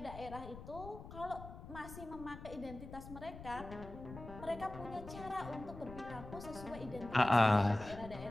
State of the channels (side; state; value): left; noise; rumble, 13 dB below the sound